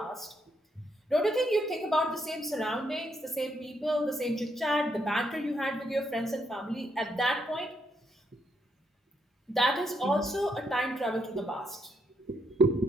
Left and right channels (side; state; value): both; normal; correlation 0.77